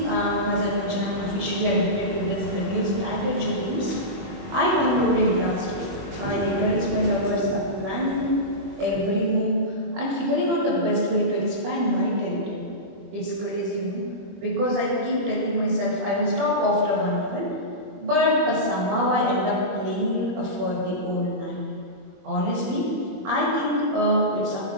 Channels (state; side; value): late; left; 21 ms